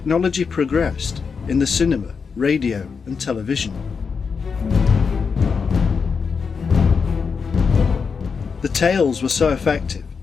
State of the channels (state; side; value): quieter; right; 5.6 dB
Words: progressed, in the cinema, radio and television. The tales were so effective